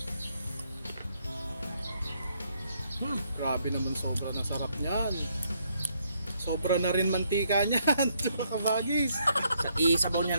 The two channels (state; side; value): inverted; both; correlation -0.73